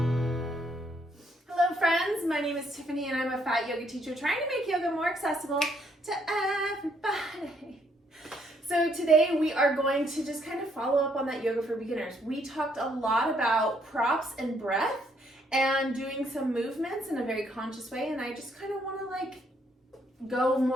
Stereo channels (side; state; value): both; normal; correlation 0.70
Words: Hello friends, my name is Tiffany and I'm a fat yoga teacher trying to make yoga more accessible to everybody. So today we are going to just kind of follow up on that yoga for beginners. We talked a lot about props and breath and doing some movements in a very conscious way, and I just kind of want to go